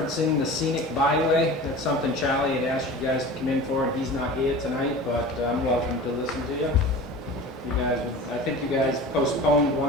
the scenic byway. That's something Charlie had asked you guys to come in for, and he's not here tonight, but I'm welcome to listen to you. You guys, I think you guys postponed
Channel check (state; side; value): normal; both; correlation 0.37